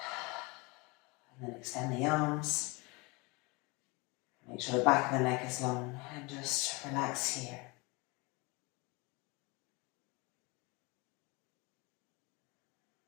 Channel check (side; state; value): right; quieter; 26.8 dB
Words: And then extend the arms. Make sure the back of the neck is long and just relax here.